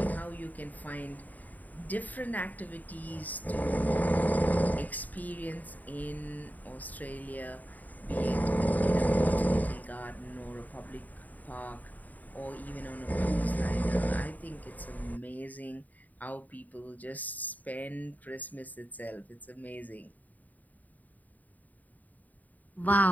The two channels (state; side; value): late; right; 0.079 ms